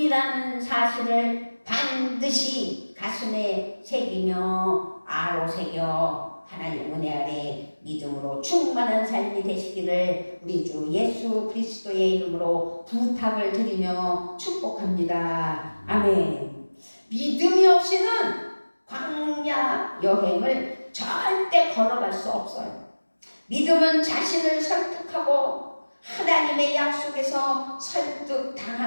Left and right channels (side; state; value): both; inverted; correlation -1.00